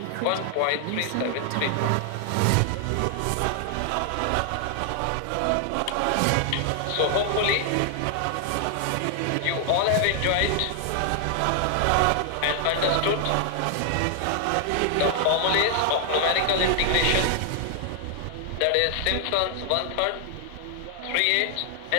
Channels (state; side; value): different; both; correlation 0.00